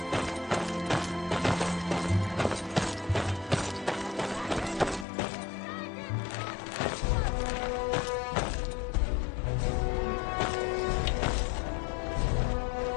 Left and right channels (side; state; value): right; drops out; at 5.1 s